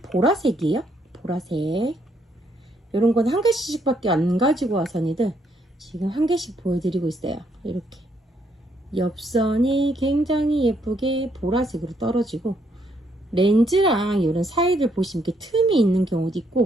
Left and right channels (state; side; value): normal; both; correlation 0.72